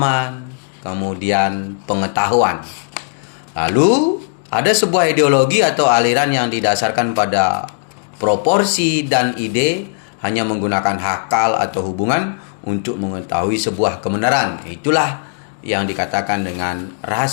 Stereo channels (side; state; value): right; silent; digital silence